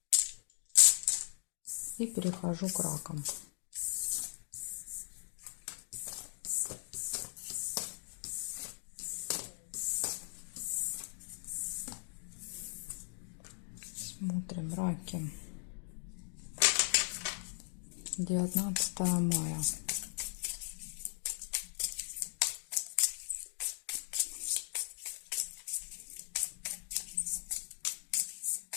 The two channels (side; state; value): right; silent; 52 dB below the other